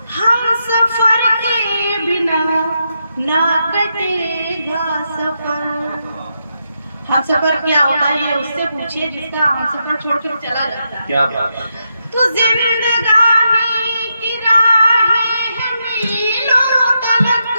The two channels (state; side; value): inverted; both; correlation -0.83